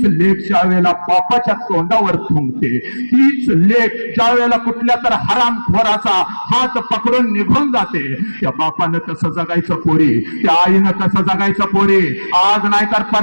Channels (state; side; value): inverted; both; correlation -1.00